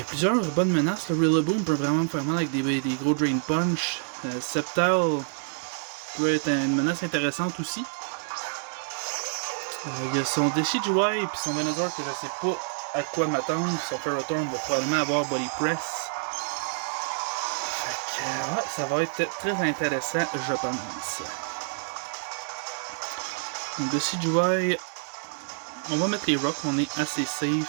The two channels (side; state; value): left; silent; 60 dB below the other